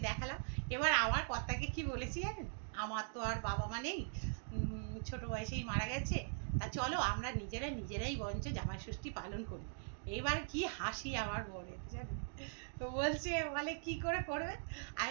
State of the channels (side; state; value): left; silent; digital silence